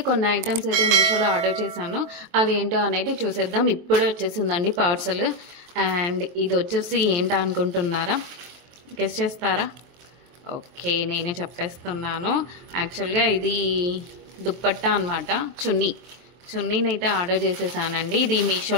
కొన్ని ఐటమ్స్ అయితే మీషోలో ఆర్డర్ చేశాను. అవి ఏంటో అనేది చూసేద్దాం. ఇప్పుడే వచ్చేసిందండి పార్సల్. అండ్ ఇది వచ్చేసి ఏంటో అనుకుంటున్నారా? గెస్ చేస్తారా? ఓకే, నేనే చెప్పేస్తున్నాను. యాక్చువల్గా ఇది దుప్పట్టా అనమాట, చున్నీని అయితే ఆర్డర్ చేసేసానండి. ఇది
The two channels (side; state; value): left; late; 23 ms